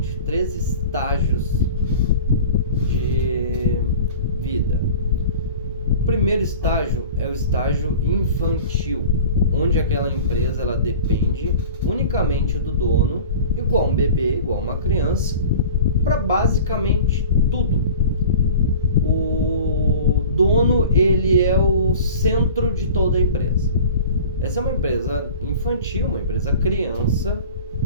3 estágios de vida. O primeiro estágio é o estágio infantil, onde aquela empresa ela depende unicamente do dono, igual um bebê, igual uma criança, para basicamente tudo. O dono, ele é o centro de toda a empresa. Essa é uma empresa infantil, uma empresa criança,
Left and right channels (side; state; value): both; inverted; correlation -0.40